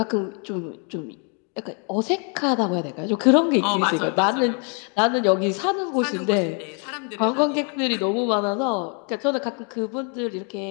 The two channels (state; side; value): quieter; right; 38.5 dB